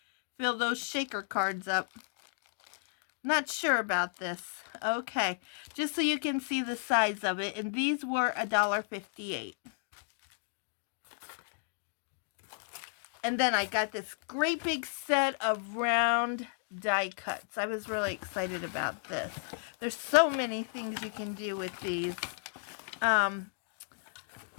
fill those shaker cards up. Not sure about this. Okay, just so you can see the size of it. And these were $1.58. And then I got this great big set of round die cuts. I was really excited about this. There's so many things you can do with these.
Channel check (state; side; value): silent; right; digital silence